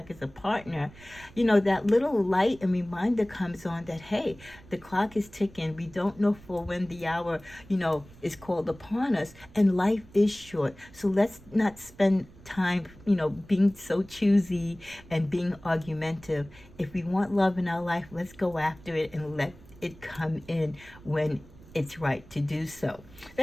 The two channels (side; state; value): right; noise; rumble, 22 dB below the sound